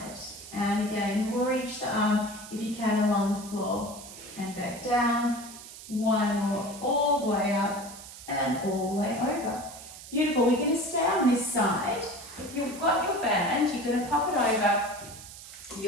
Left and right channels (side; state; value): right; noise; hiss, 15 dB below the sound